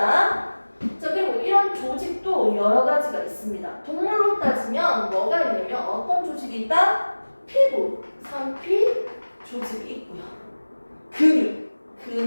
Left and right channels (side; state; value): both; inverted; correlation -1.00